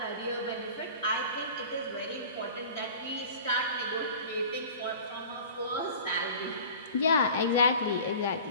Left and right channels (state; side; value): inverted; both; correlation -0.41